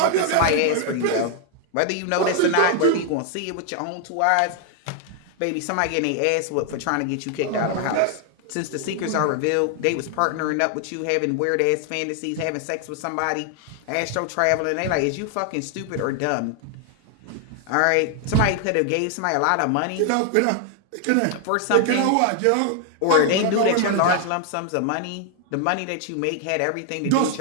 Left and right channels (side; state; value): both; different; correlation 0.00